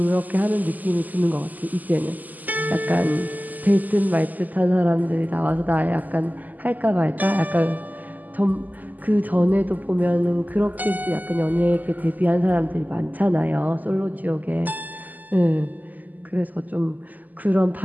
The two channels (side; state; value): left; late; 0.082 ms